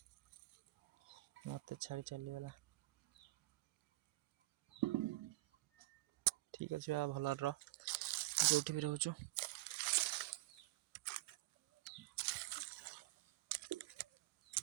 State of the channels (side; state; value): left; quieter; 20.6 dB